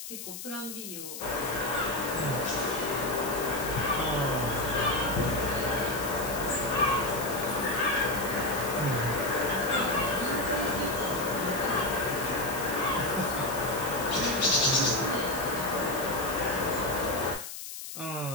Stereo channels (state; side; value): noise; left; hiss, 9 dB below the sound